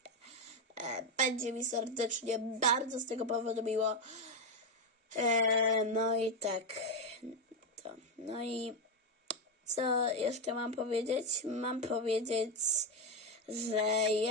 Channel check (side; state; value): both; normal; correlation 0.08